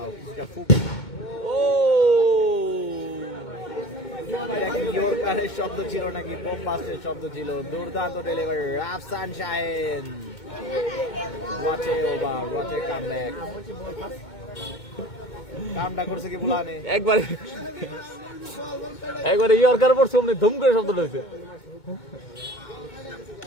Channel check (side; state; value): right; late; 2.2 ms